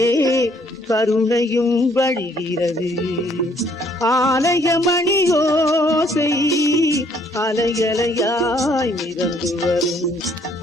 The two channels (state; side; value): normal; both; correlation 0.65